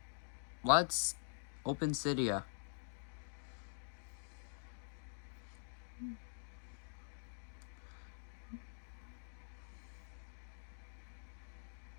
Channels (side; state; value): right; silent; digital silence